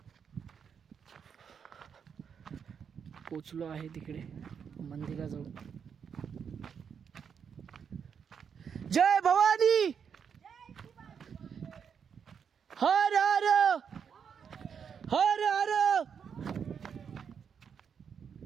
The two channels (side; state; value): left; quieter; 7.1 dB